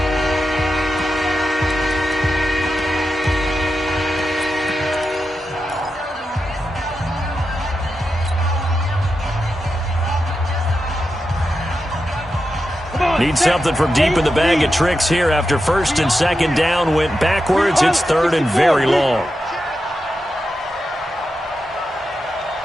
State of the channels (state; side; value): normal; both; correlation 0.89